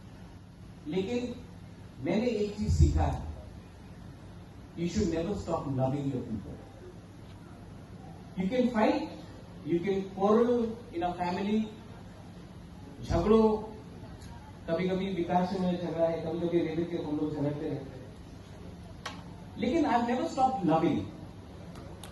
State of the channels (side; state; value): both; identical; correlation 1.00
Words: लेकिन मैंने एक चीज सीखा है, you should never stop loving your people. You can fight, you can quarrel in a family, झगड़ो, कभी कभी विकास से मेरा झगड़ा है, कभी कभी रेडियो के हम लोग झगड़ते रहते हैं, लेकिन I never stop loving.